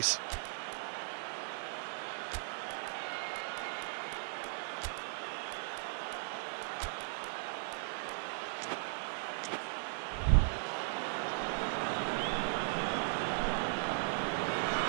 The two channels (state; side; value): silent; left; 53 dB below the other